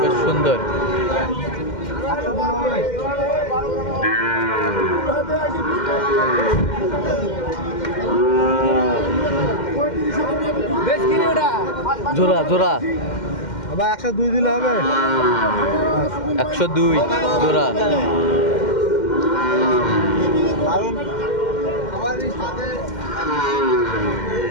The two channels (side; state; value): right; late; 2.1 ms